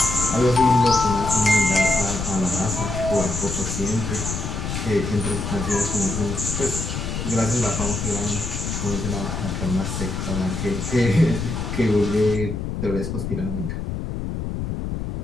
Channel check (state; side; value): noise; left; rumble, 4 dB below the sound